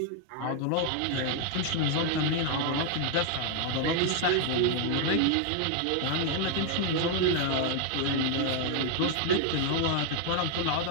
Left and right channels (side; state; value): both; different; correlation 0.00